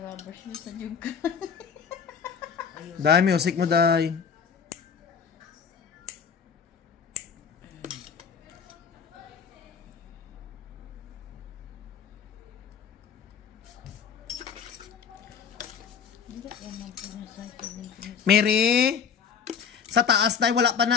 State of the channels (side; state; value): right; quieter; 6.9 dB